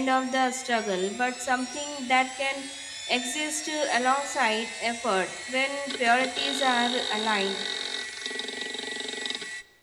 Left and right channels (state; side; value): identical; both; correlation 1.00